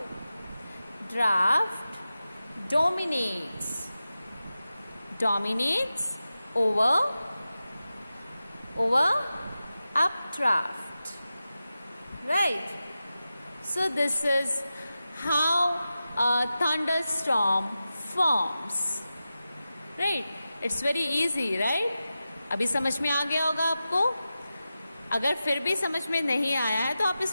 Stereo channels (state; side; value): inverted; both; correlation -0.93